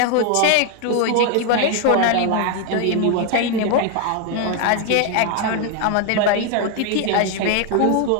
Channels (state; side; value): different; both; correlation 0.01